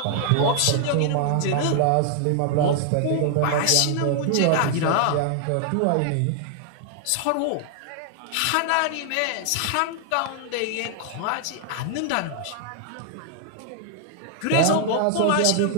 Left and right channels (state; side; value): different; both; correlation 0.00